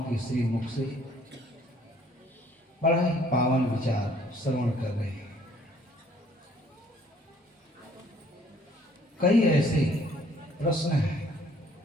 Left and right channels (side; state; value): both; normal; correlation 0.60